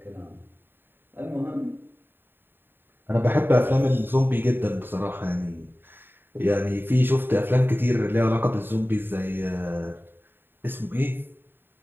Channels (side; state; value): left; late; 0.097 ms